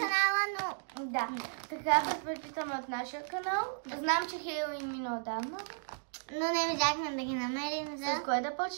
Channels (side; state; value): left; silent; digital silence